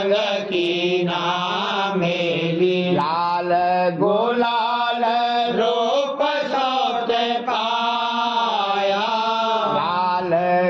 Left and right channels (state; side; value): identical; both; correlation 1.00